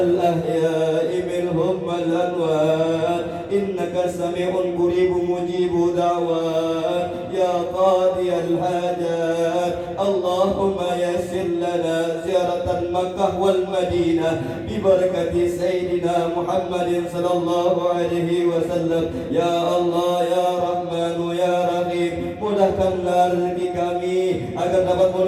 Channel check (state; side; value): identical; both; correlation 1.00